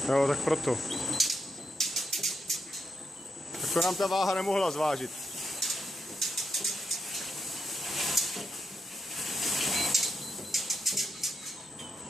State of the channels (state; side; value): normal; both; correlation 0.84